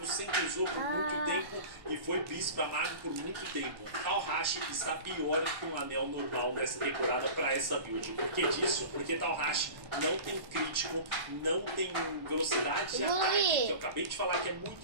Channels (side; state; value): left; late; 1.1 ms